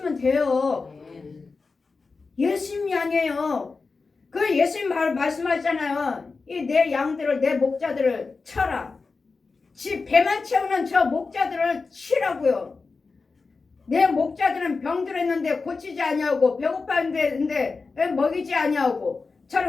돼요. 예수님 양이에요. 그 예수님 말씀하시잖아요. 이 내 양들을 내 목자들을 쳐라. 지 배만 채우는 저 목자들을 치라고요. 내 목자들은 병들었는데 고치지 아니하고 배고팠는데 먹이지 아니하고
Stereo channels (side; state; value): right; quieter; 4.3 dB